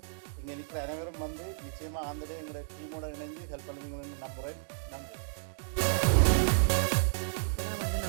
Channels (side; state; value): left; silent; digital silence